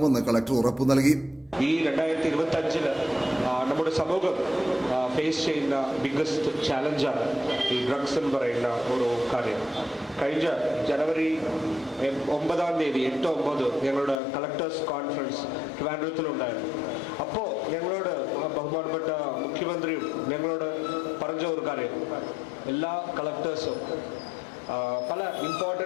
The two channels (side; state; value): right; drops out; at 14.2 s